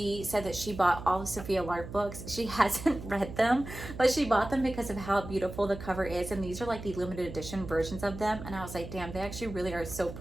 said that she bought all the Sophia Lark books. She hasn't read them, but she bought them because of how beautiful the cover is, and these are like the limited edition versions of them, and I was like, damn, they actually really are so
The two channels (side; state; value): right; noise; hum, 11 dB below the sound